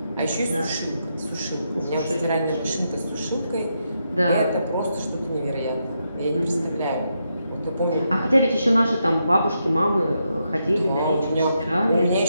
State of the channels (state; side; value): inverted; both; correlation -0.82